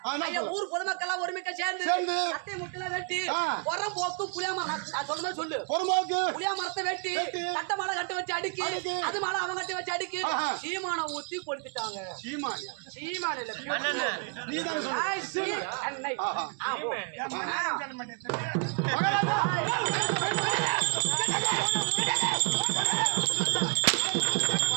என்ன ஐயா ஊர் பொதுமக்கள் ஒருமிக்க சேர்ந்து சேர்ந்து கட்டை முட்டல வெட்டி ஆ. உரம் போக்கு புளியா மரம் நான் சொன்ன மாதிரி சொல்லு. பொறுமாக்கு புளியா மரத்தை வெட்டி கட்ட மாலை கட்ட வச்சு அடிக்கி அடிக்கி. அது மாலை அவன் கட்டி வச்சு அடிக்கி ஆஹா. சீமான ஊத்தி கொடுத்துட்டாங்க. சீமானியா சீமான இல்ல நீ தான் சொல்லு. ஐ சீ அன்னை. ஆஹா. ஆ போ. என் மகன் சொல்ல மாட்டேன்.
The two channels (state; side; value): quieter; left; 38.3 dB